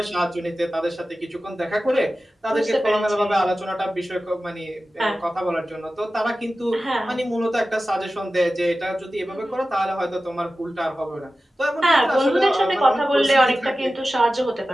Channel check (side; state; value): both; normal; correlation 0.95